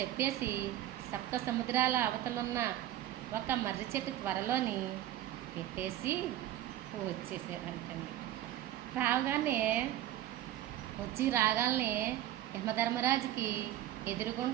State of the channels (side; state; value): left; quieter; 13.3 dB